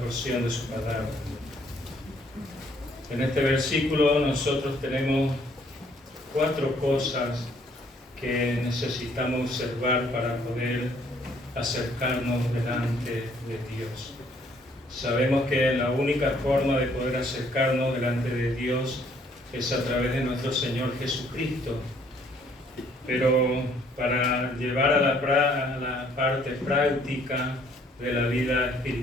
de su palabra. En este versículo nosotros tenemos 4 cosas que necesitamos observar para poder acercarnos delante de Dios. Sabemos que la única forma de poder acercarnos delante de Dios es a través de nuestro Señor Jesucristo. Pero para llevar a la parte práctica de la vida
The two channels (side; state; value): both; normal; correlation 0.64